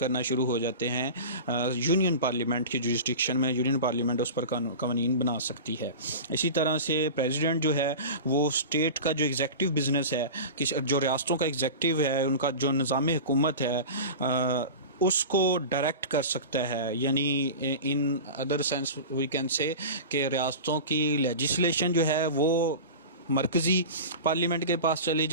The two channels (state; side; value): inverted; both; correlation -0.31